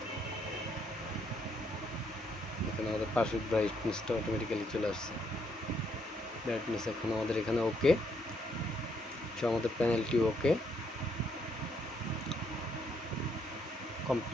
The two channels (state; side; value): normal; both; correlation 0.73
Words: এখানে আমাদের পাশের ব্রাইটনেসটা অটোমেটিক্যালি চলে আসছে। ব্রাইটনেস এখন আমাদের এখানে ওকে, আমাদের প্যানেলটি ওকে